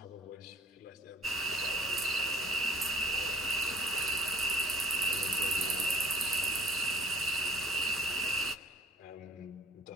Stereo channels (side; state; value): both; normal; correlation 0.52